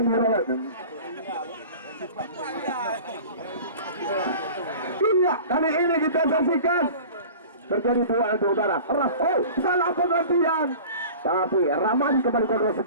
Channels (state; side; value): inverted; both; correlation -0.40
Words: Rolas. Iya, kali ini kita saksikan terjadi dua udara. Oh, salah pengertian. Tapi Ramadi kembali kontrol